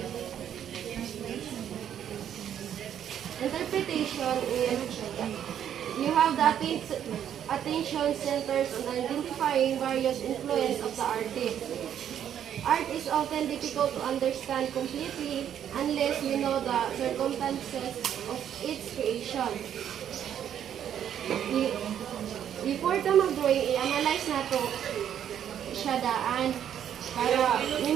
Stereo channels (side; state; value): left; quieter; 9.7 dB